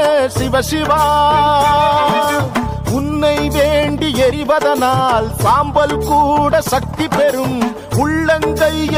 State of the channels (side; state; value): both; identical; correlation 1.00